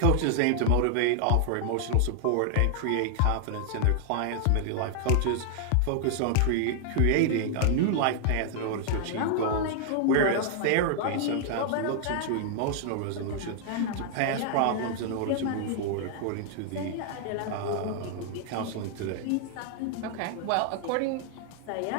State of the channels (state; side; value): different; both; correlation -0.01